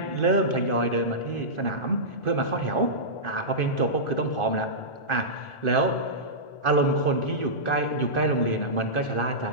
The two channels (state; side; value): late; right; 1.4 ms